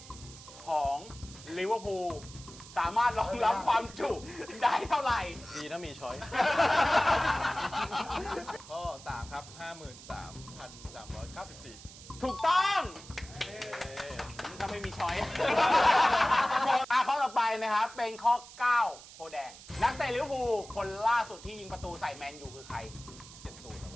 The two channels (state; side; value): noise; right; hiss, 17 dB below the sound